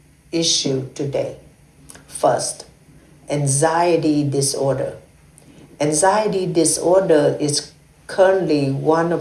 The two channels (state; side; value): identical; both; correlation 1.00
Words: issues today. First, anxiety disorder. Anxiety disorder is currently one